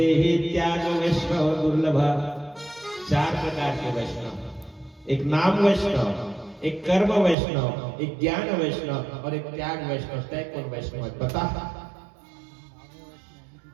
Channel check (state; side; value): drops out; left; at 7.4 s